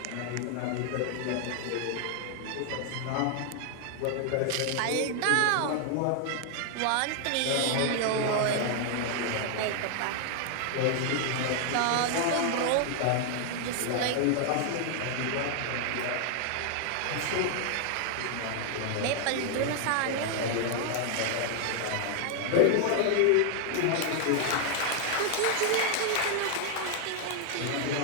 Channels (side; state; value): both; different; correlation 0.00